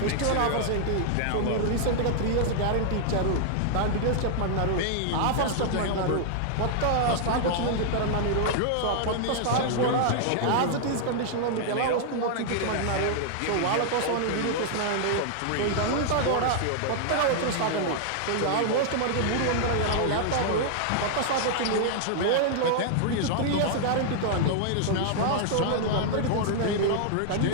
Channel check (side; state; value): both; different; correlation -0.01